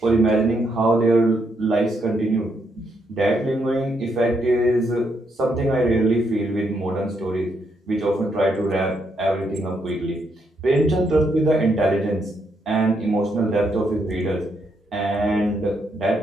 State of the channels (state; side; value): normal; both; correlation 0.77